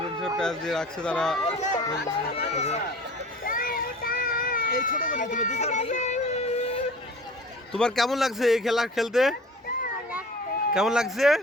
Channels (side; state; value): both; normal; correlation 0.43